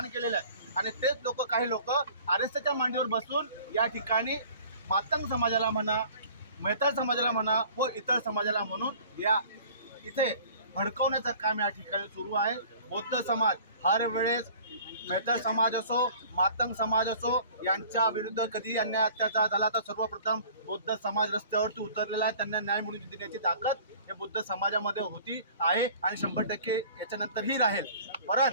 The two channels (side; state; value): both; inverted; correlation -0.48